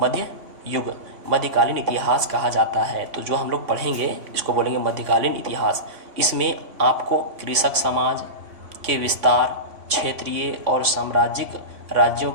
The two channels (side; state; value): left; late; 3.5 ms